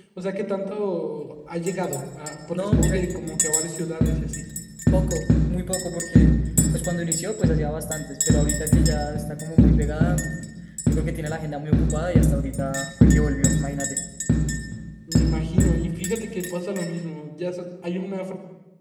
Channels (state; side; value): identical; both; correlation 1.00